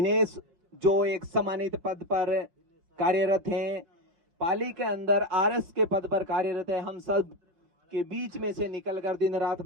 जो एक सम्मानित पद पर कार्यरत हैं, पाली के अंदर आरएस के पद पर कार्यरत है। हम सब के बीच में से निकलकर दिन रात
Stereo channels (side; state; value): left; late; 5.7 ms